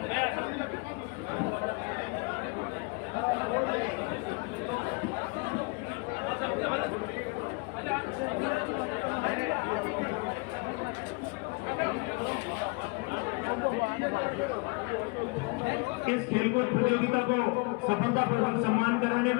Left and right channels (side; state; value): right; quieter; 29.1 dB